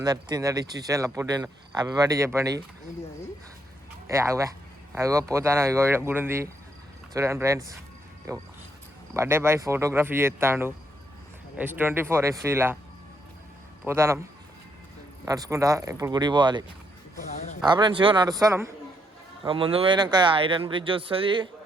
తిందడి ఇచ్చి పుట్టిన హ్యాపీ బర్త్డే చెప్పండి. అగో పోతాను. ఇగో గుడి ఉంది చూడండి ఫ్రెండ్స్. బర్త్డే బాయ్ ఫోటోగ్రఫీ చేస్తాడు. S24 FCలా పోతాను నడుచుకుంటా. ఇప్పుడు గుడికి పోవాలి. ఫ్రెండ్స్ ఇగో నడుస్తాను. ముందు పోయినాక ఐరన్ బ్రిడ్జ్ వస్తుంది,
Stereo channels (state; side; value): normal; both; correlation 0.75